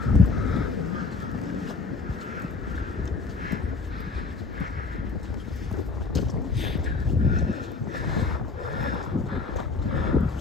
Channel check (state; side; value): quieter; right; 4.2 dB